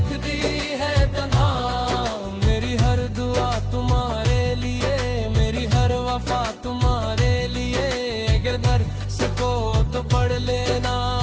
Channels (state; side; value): identical; both; correlation 1.00